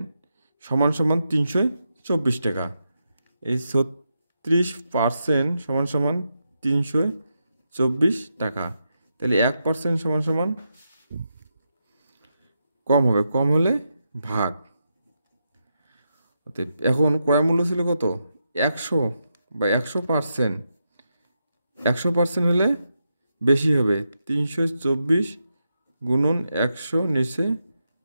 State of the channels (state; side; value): inverted; both; correlation -0.85